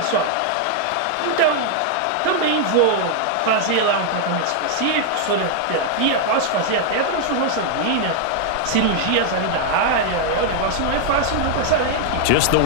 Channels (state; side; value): different; both; correlation 0.00